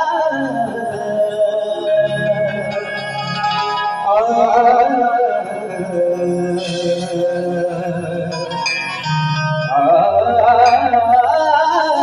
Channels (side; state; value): both; identical; correlation 1.00